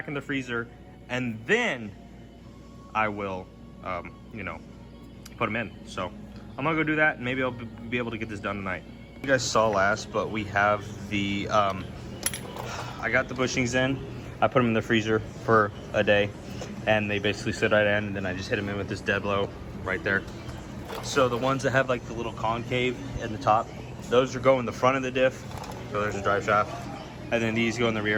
in the freezer, and then I will, you know, put them in. So I'm gonna go do that, and maybe I'll be able to get this done tonight. You guys saw last, but we have the, I got the bushings in, I put them in the freezer for a day, and they basically sit right in, and then I just hit them in with this dead blow right there. So the ones that have like the little concave in the top, those are go in the front of the diff, so there's a drive shaft, and then these go in the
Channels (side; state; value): both; identical; correlation 1.00